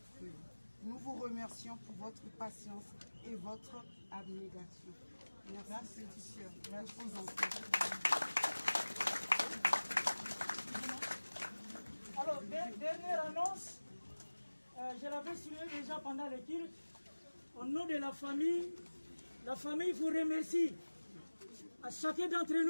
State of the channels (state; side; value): inverted; both; correlation -1.00